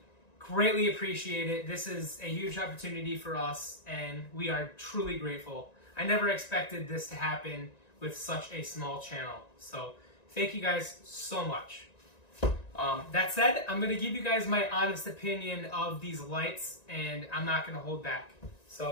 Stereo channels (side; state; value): right; late; 1.9 ms